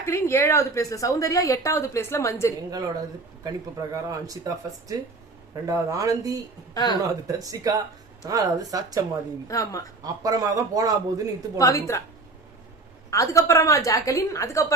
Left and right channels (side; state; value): left; quieter; 3.4 dB